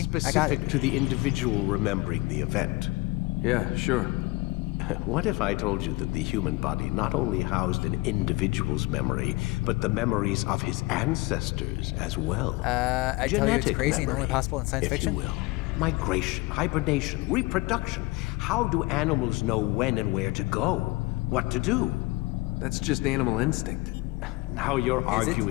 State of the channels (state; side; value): quieter; right; 21.8 dB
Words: I got Specific it. to the individual remembering the event. Yeah, sure. What if I told you that the human body not only housed an individual's memory, but the memories of his ancestors as well? I tell you it's Genetic crazy and only memory, possible in science if fiction. you will. Migration, hibernation, reproduction. How do animals know when and where to go? What to do? That's just animal instinct. Now you're Is it?